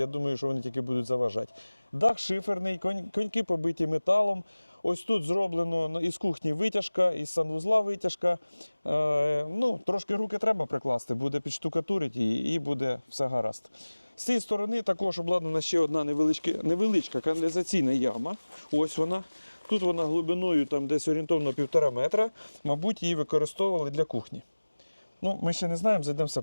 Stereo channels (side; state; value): both; inverted; correlation -1.00